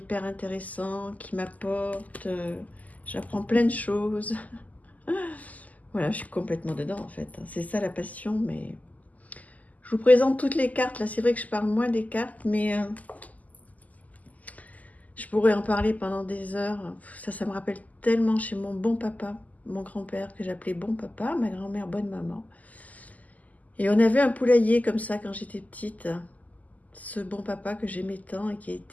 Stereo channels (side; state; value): right; late; 0.077 ms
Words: intéressants, qui m'apportent. J'apprends plein de choses. Voilà, je suis complètement dedans en fait. C'est ça la passion, mais je vous présente toutes les cartes. Là, c'est vrai que je parle moins des cartes, mais je pourrais en parler pendant des heures. Ça me rappelle tellement chez mon bon papa, mon grand-père, que j'appelais bon papa, ma grand-mère bonne maman. Et on avait un poulailler comme ça quand j'étais petite. Ce bon papa que j'aimais tant et qui a